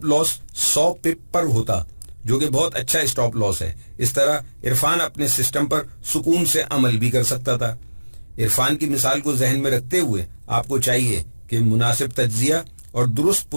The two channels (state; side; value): inverted; both; correlation -1.00